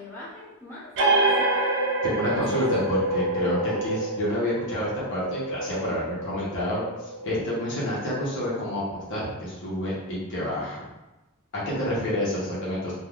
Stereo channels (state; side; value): normal; both; correlation 0.00